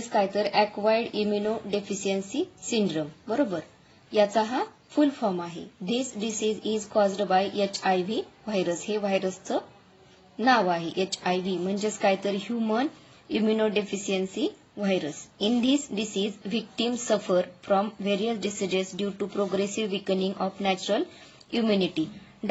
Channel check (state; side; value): identical; both; correlation 1.00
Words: काय तर ॲक्वायर्ड इम्युनो डेफिशियन्सी सिंड्रोम, बरोबर. याचा हा फुल फॉर्म आहे. This disease is caused by HIV virus. हे व्हायरसचं नाव आहे HIV म्हणजेच काय तर human immunodeficiency virus. In this disease victims suffer from various diseases due to progressive weakening of natural immunity.